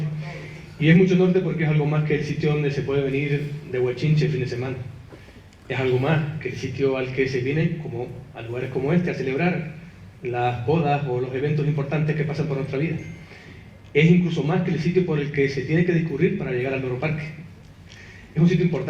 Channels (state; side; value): identical; both; correlation 1.00